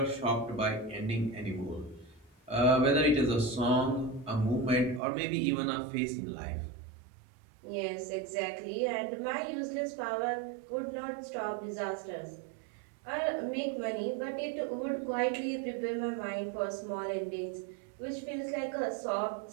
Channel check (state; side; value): drops out; left; at 5.0 s